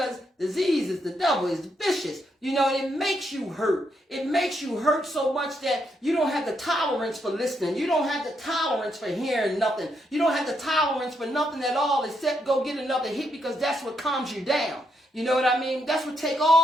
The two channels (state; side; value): normal; both; correlation 0.78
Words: disease is the devil, is vicious. You know, it makes you hurt. It makes you hurt so much that you don't have the tolerance for listening. You don't have the tolerance for hearing nothing. You don't have the tolerance for nothing at all except go get another hit because that's what calms you down. You know what I mean? That's what take